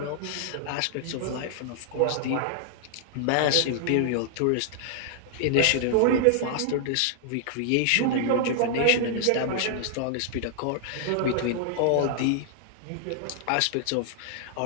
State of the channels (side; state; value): both; different; correlation -0.01